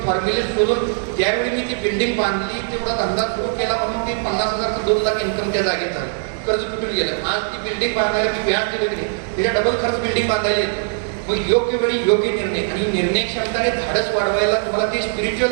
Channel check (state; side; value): silent; left; 66 dB below the other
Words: फॉर्म्युले शोधून त्यावेळी मी ती बिल्डिंग बांधली. तेवढा धंदा सुरू केला म्हणून ती 50,000चं 2 लाख इन्कम त्या जागेत झालं. कर्ज कुठून गेलं. आज ती बिल्डिंग बांधायला मी व्याज दिलं की नाही, त्याच्या डबल खर्च बिल्डिंग बांधायला येते. मग योग्य वेळी योग्य निर्णय, आणि निर्णय क्षमताने धाडस वाढवायला तुम्हाला ते